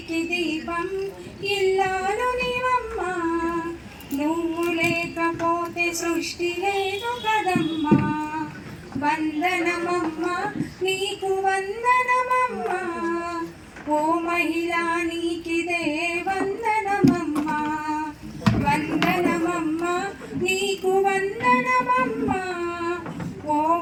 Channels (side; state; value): both; identical; correlation 1.00